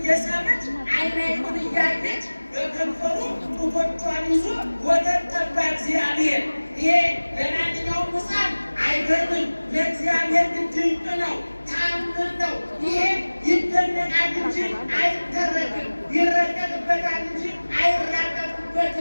ዓይን ዓይኑን እያየች በከንፈሩ ጡቶቿን ይዞ ወተት ጠባ እግዚአብሔር። ይሄ ለማንኛውም ሕፃን አይገርምም፣ ለእግዚአብሔር ግን ድንቅ ነው፣ ተአምር ነው። ይሄ ይደነቃል እንጂ አይተረክም፣ ይረቀቅበታል እንጂ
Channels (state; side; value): inverted; both; correlation -1.00